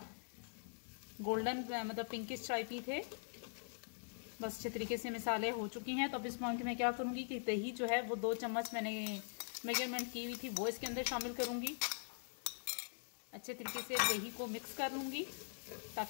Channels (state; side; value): silent; right; digital silence